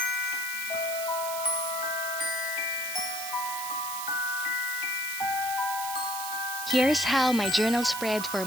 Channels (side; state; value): right; noise; hiss, 6 dB below the sound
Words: Here's how my journal spread for